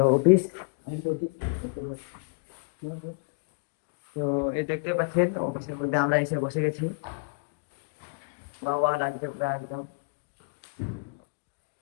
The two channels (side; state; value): right; quieter; 34.7 dB